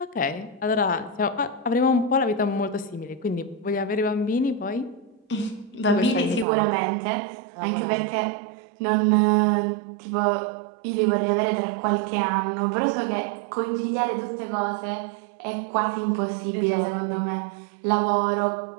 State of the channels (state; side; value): drops out; left; at 6.5 s